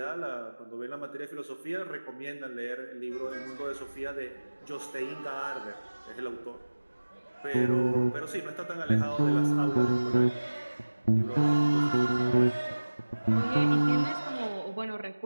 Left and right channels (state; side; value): inverted; both; correlation -1.00